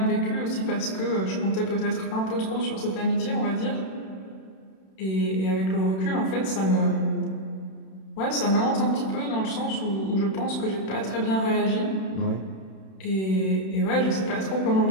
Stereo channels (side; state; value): right; late; 31 ms